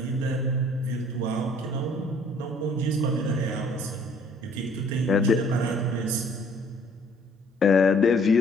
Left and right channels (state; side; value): normal; both; correlation 0.58